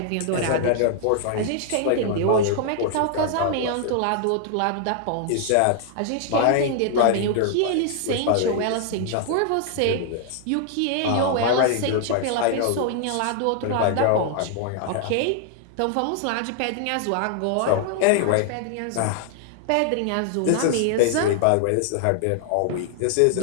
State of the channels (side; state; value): both; different; correlation -0.01